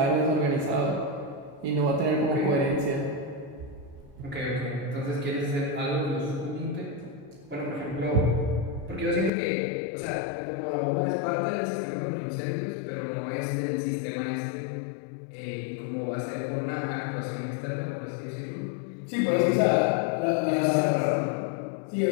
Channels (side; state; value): right; drops out; at 9.3 s